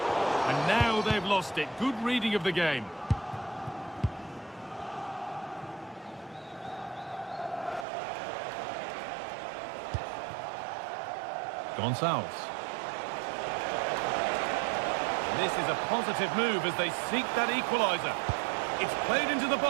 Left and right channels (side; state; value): left; drops out; at 7.9 s